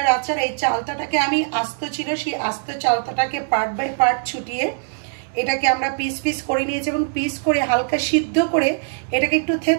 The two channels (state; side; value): silent; left; 65 dB below the other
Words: আচার। এই চালতাটাকে আমি আস্ত ছিল সেই আস্ত চালতাটাকে পার্ট বাই পার্ট ছুটিয়ে এটাকে আমরা পিস পিস করে নিয়েছি এবং পিস করে হালকা সিদ্ধ করে এটাকে একটু